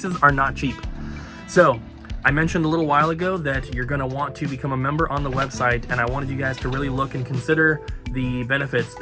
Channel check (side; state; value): both; identical; correlation 1.00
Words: are not cheap. So I mentioned a little while ago that you're going to want to become a member on the website, and I wanted you guys to really look and consider the benefits